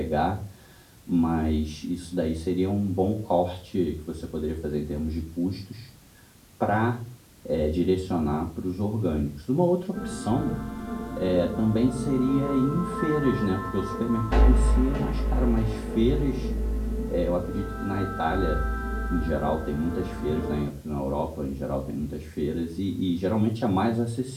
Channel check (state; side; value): identical; both; correlation 1.00